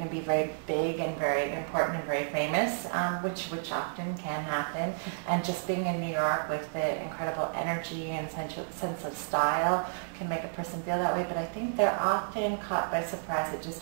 to be very big and very important and very famous, which often can happen. And just being in New York with the incredible energy and sense of style can make a person feel that way. But I think they're often caught by surprise at just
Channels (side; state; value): left; silent; digital silence